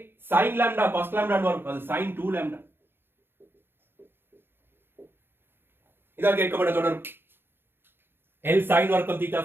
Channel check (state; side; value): late; left; 0.10 ms